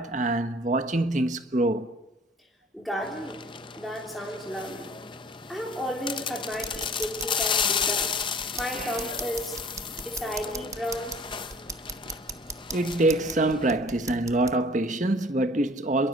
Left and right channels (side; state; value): both; normal; correlation 0.50